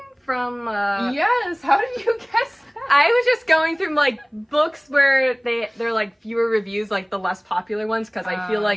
from Yes, how did you guess that? I was just going through like books where they're like fewer reviews, like the less popular ones, because I feel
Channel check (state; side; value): identical; both; correlation 1.00